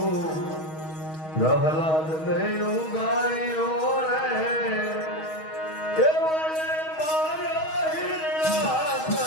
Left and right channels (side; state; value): right; late; 6.3 ms